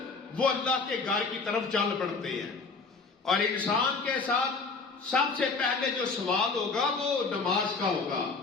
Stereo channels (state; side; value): quieter; right; 4.3 dB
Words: وہ اللہ کے گھر کی طرف چل پڑتے ہیں. اور انسان کے ساتھ سب سے پہلے جو سوال ہوگا وہ نماز کا ہوگا،